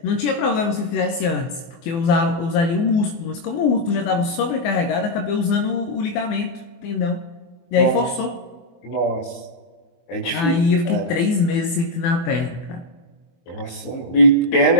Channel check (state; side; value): late; right; 24 ms